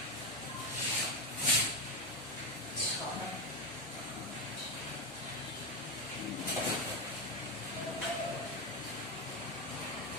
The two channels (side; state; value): both; normal; correlation 0.11